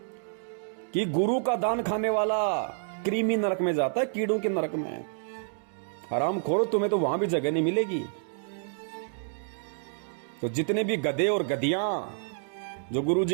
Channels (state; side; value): silent; left; digital silence